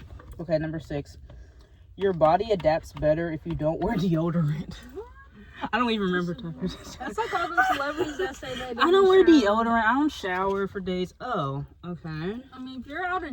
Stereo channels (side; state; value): both; identical; correlation 1.00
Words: Okay, number 6. Your body adapts better if you don't wear deodorant. I don't even remember. That's like all those celebrities that say they I don't wear deodorant. I don't shower for days. Oh, okay. I mean, if you're out